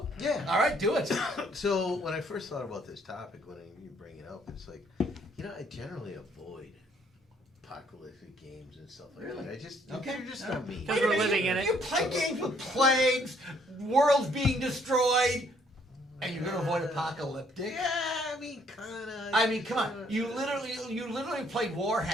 yeah. All right. Do it. So when I first thought about this topic, when you bring it up, it's like, I generally avoid apocalyptic games and stuff like that. I just Okay. they're just not me. Because Wait a we're minute, living in it. You play games with plagues, worlds being destroyed, and you're gonna avoid apocalyptic. Yeah, I mean, kinda. I mean, come on. You literally play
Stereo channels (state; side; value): normal; both; correlation 0.65